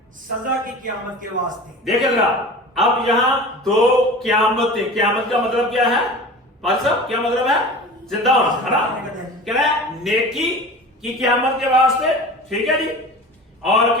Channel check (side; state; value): both; normal; correlation 0.37